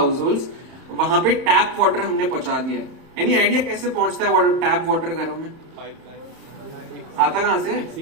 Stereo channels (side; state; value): left; late; 30 ms